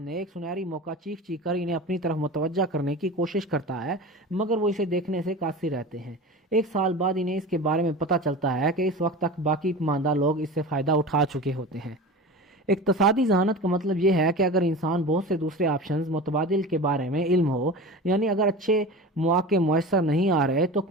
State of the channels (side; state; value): both; normal; correlation 0.32